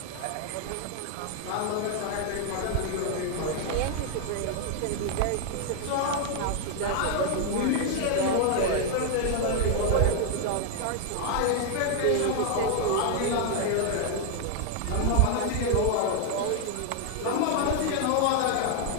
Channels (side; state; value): both; different; correlation 0.00